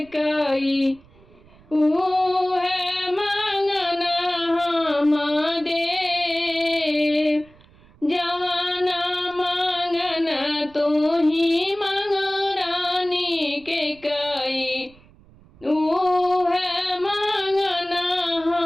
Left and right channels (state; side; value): noise; right; rumble, 27 dB below the sound